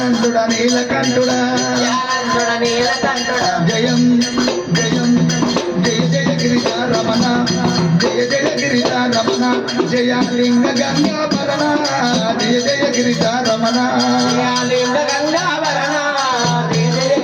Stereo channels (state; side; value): identical; both; correlation 1.00